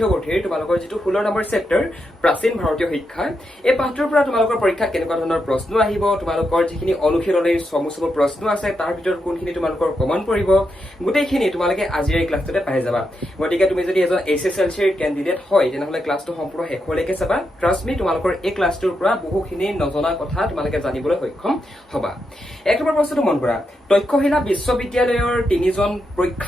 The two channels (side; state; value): both; normal; correlation 0.84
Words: তোমালোকৰ যিটো 16 নম্বৰ চেপ্টাৰ প্ৰাচীন ভাৰতীয় শিক্ষা। এই পাঠটোৰ পৰা তোমালোকৰ পৰীক্ষাত কেনেকুৱা ধৰণৰ প্ৰশ্ন আহিব, তোমালোকৰ যিখিনি অনুশীলনীৰ চমু প্ৰশ্ন আছে তাৰ ভিতৰত কোনখিনি তোমালোকৰ কমন পৰিব, গোটেইখিনি তোমালোকে আজিৰ এই ক্লাছটোতে পাই যাবা। গতিকে তুমি যদি এজন HSLCৰ কেণ্ডিডেট হয় তেনেহ'লে ক্লাছটো সম্পূৰ্ণ শেষলৈকে চাবা। ট্ৰাষ্ট মি, তোমালোকৰ এই ক্লাছটোৰ পৰা বহুখিনি নজনা কথা তোমালোকে জানিবলৈ সক্ষম হবা। এক নম্বৰ প্ৰশ্নটো মন কৰা, তক্ষশিলা বিশ্ববিদ্যালয়ৰ 3জন